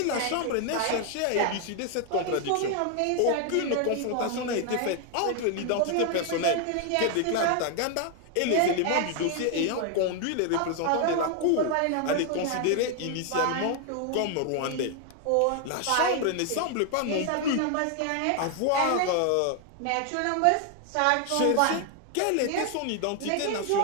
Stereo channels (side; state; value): both; different; correlation 0.00